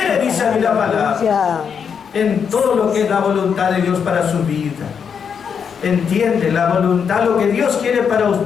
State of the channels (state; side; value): quieter; right; 6.9 dB